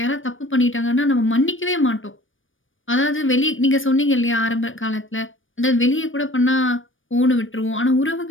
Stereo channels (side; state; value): right; late; 0.57 ms